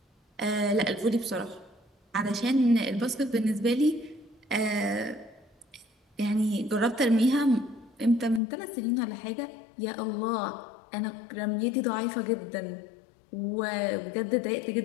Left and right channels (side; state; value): right; drops out; at 8.4 s